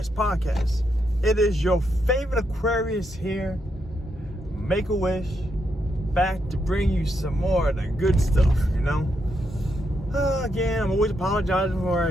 podcast. It is your favorite Aquarius here, Make-A-Wish, back to bring you some more of the good stuff, Again, I'm always apologizing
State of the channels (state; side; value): normal; both; correlation 0.80